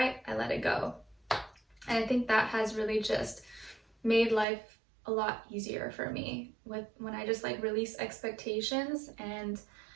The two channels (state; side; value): drops out; left; at 4.5 s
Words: I let it go. And I think that has really just made life a lot easier for me when I just like release expectations and